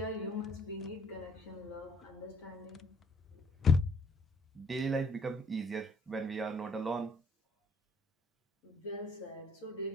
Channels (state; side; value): normal; both; correlation 0.62